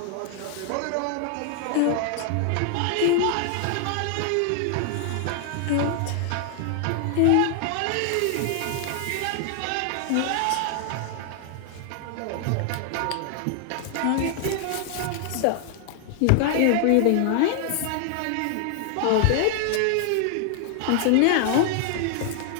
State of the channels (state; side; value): different; both; correlation 0.00